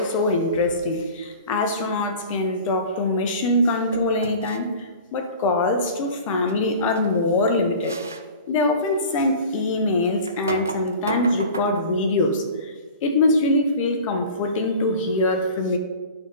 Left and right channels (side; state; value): both; inverted; correlation -0.39